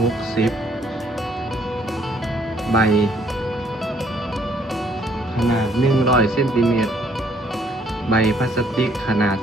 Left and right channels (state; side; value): normal; both; correlation 0.65